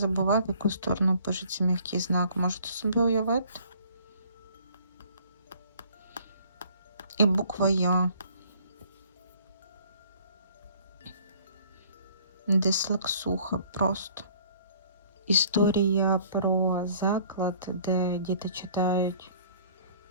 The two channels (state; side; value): inverted; both; correlation -0.55